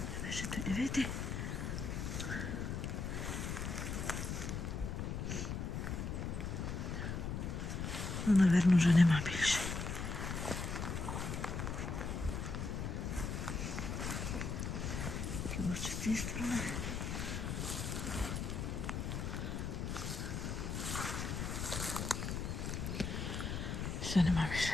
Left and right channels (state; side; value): noise; left; rumble, 2 dB below the sound